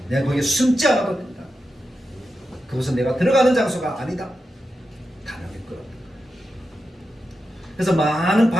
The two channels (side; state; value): both; normal; correlation 0.89